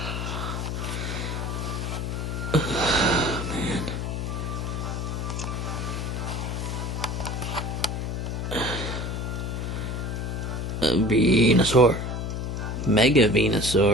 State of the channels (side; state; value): left; noise; hum, 3 dB below the sound